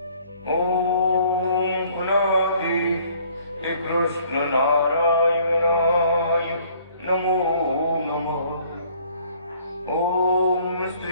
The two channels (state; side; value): inverted; both; correlation -0.59